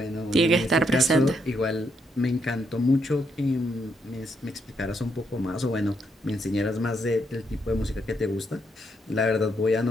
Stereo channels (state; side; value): normal; both; correlation 0.76